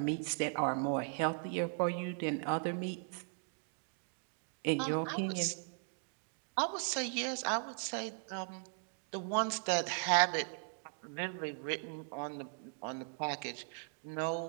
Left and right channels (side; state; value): left; silent; 52 dB below the other